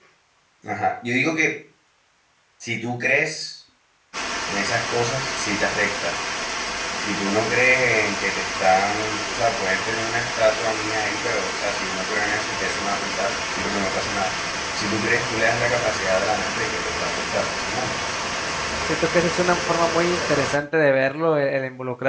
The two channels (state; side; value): identical; both; correlation 1.00